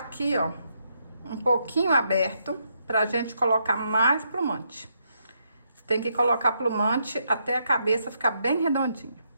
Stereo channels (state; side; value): inverted; both; correlation -0.78